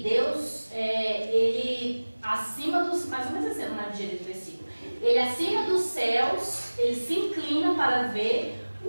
Deus, ele acima dos, mais ou menos assim, não é direito do versículo, ele acima dos céus, ele se inclina para ver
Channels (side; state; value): both; inverted; correlation -1.00